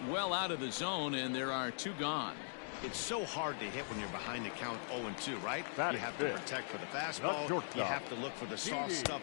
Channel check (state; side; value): silent; right; digital silence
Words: well out of the zone, and there are 2 gone. It's so hard to hit when you're behind the count 0-2, right? You have to protect for the fastball. You have to look for the soft stuff